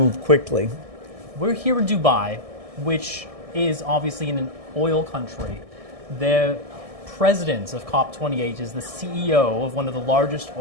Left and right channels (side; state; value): left; late; 1.6 ms